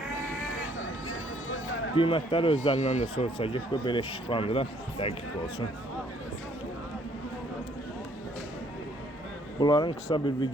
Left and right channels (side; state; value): both; normal; correlation 0.64